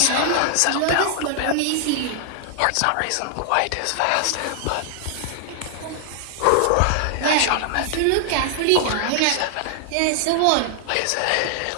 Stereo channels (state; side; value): different; both; correlation 0.00